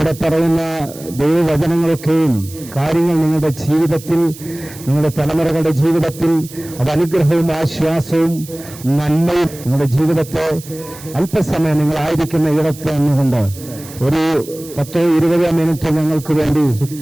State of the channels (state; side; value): noise; right; hiss, 17 dB below the sound